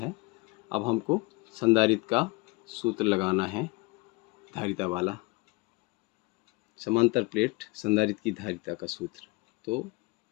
अब हमको संधारित्र का सूत्र लगाना है, धारिता वाला, समांतर प्लेट संधारित्र की धारिता का सूत्र, तो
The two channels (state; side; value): quieter; right; 25.7 dB